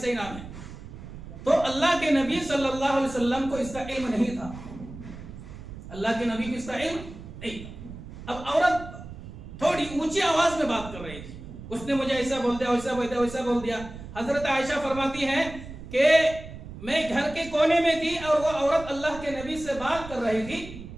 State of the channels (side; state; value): right; noise; rumble, 13 dB below the sound